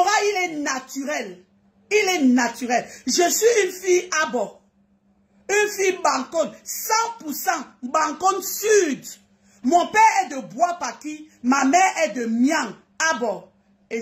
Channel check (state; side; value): identical; both; correlation 1.00